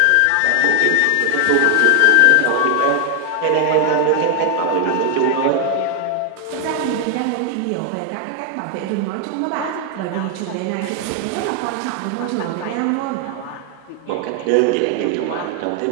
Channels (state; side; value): different; both; correlation 0.00